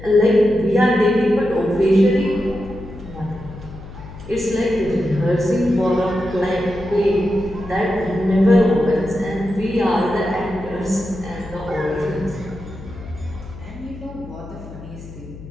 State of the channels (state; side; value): noise; left; hum, 15 dB below the sound